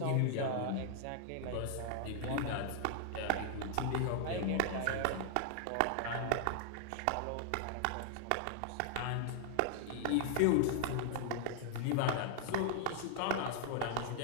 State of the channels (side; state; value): both; different; correlation 0.00